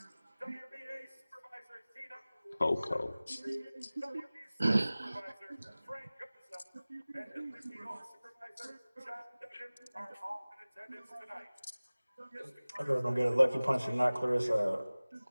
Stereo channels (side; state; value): both; inverted; correlation -0.99